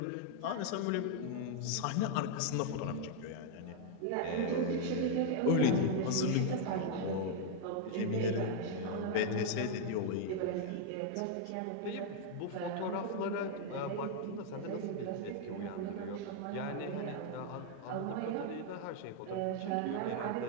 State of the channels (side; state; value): both; different; correlation 0.00